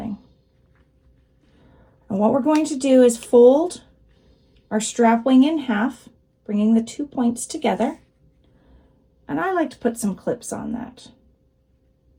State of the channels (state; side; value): identical; both; correlation 1.00